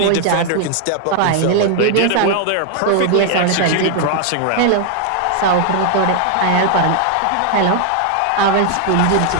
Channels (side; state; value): both; different; correlation 0.00